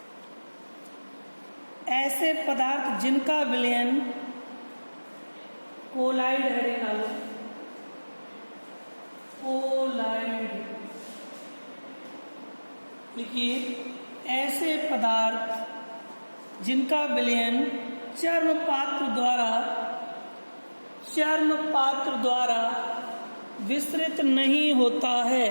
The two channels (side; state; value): both; inverted; correlation -1.00